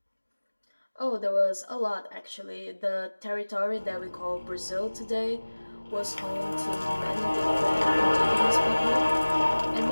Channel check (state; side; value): inverted; both; correlation -1.00